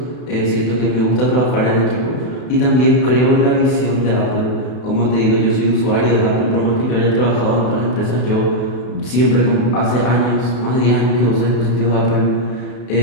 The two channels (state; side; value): late; right; 32 ms